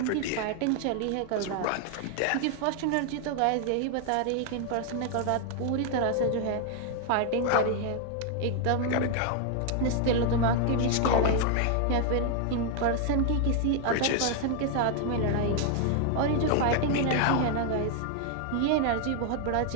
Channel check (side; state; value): both; different; correlation 0.00